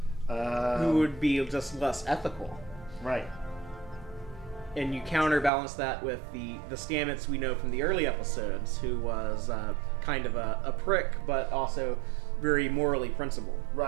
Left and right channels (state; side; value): drops out; left; at 5.5 s